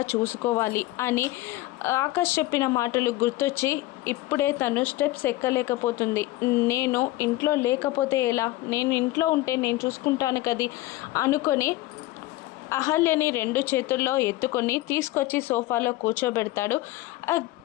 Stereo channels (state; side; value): quieter; right; 17.8 dB